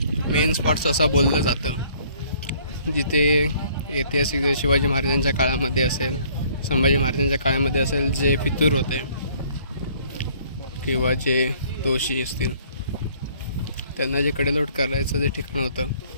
मेन स्पॉट्स असं बोललं जातं, जिथे ऐतिहासिक जे शिवाजी महाराजांच्या काळामध्ये असेल, संभाजी महाराजांच्या काळामध्ये असेल, जे फितूर होते किंवा जे दोषी असतील त्यांना जे कडेलोट करायचं जे ठिकाण होतं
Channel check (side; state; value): both; inverted; correlation -0.59